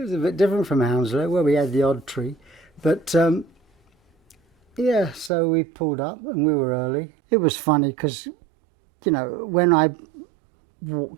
a bit different from Hounslow, where we had the odd tree. But yeah, so we pulled up and we were early. It was funny because, when I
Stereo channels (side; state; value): left; drops out; at 5.3 s